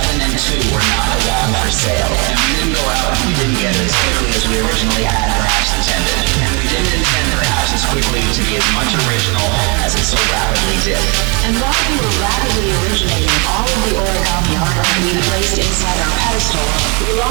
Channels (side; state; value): left; quieter; 31.9 dB